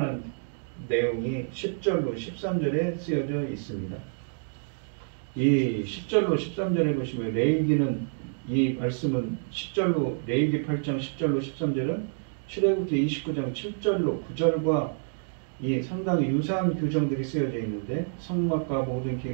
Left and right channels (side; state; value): left; silent; digital silence